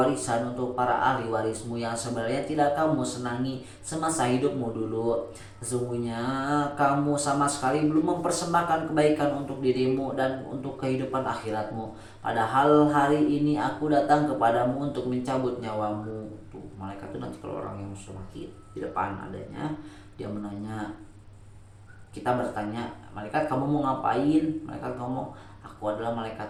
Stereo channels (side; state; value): both; identical; correlation 1.00